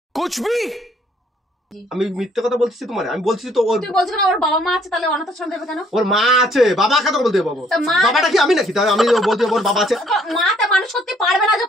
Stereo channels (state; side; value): normal; both; correlation 0.64